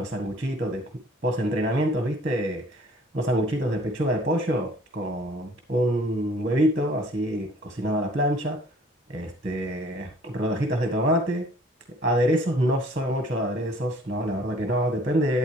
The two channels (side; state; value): both; normal; correlation 0.55